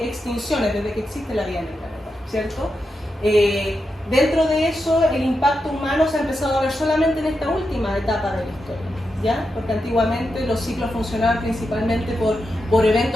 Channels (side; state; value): both; normal; correlation 0.87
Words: extinciones desde que existe la vida en el planeta, ¿cierto? Dentro de eso, el impacto humano se ha empezado a ver solamente en esta última etapa de la historia, ¿ya? Porque antiguamente los ciclos funcionaban principalmente por